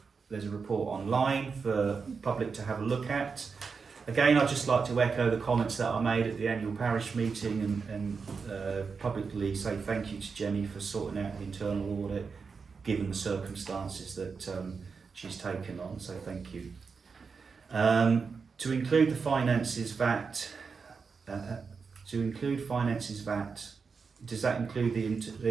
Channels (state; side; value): quieter; left; 5.2 dB